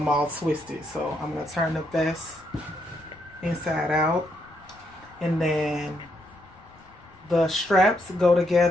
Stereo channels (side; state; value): left; noise; rumble, 27 dB below the sound